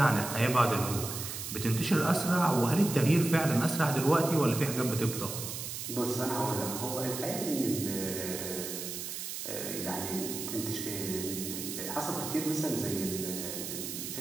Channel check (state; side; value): noise; right; hiss, 6 dB below the sound